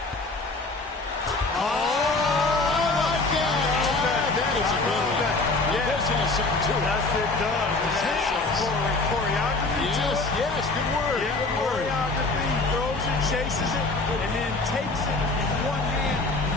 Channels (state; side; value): quieter; right; 3.4 dB